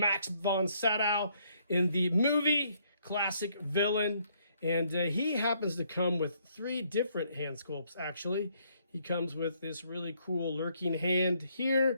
von Sydow in the movie Classic Villain. And he happens to come with 3 different hand sculpts, actually. He comes with this really cool lurking hand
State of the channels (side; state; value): both; inverted; correlation -0.70